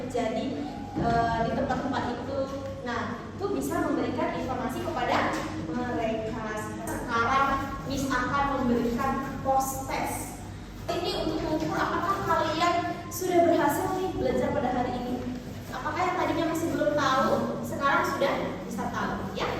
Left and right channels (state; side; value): identical; both; correlation 1.00